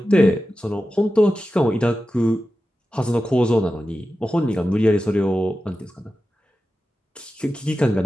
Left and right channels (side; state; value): both; normal; correlation 0.93